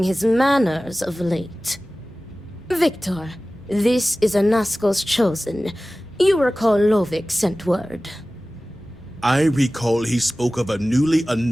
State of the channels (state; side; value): normal; both; correlation 0.97